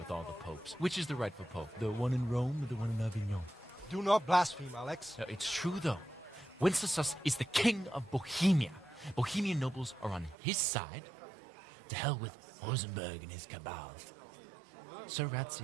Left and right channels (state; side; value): drops out; left; at 10.4 s